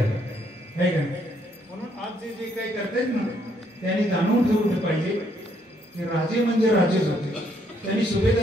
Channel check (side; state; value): both; normal; correlation 0.71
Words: आहे का? म्हणून आज जे जे काही करतायत ना त्यांनी जाणून ठेवलं पाहिजे की राजे म्हणजे राजेच होते. त्यांनी